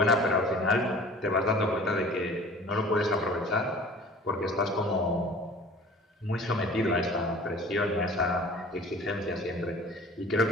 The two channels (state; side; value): normal; both; correlation 0.45